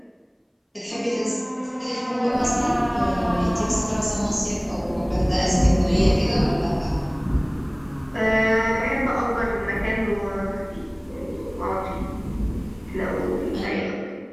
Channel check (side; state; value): both; identical; correlation 1.00